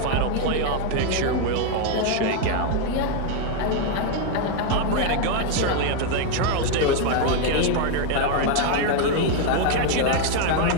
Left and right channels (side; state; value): both; different; correlation 0.01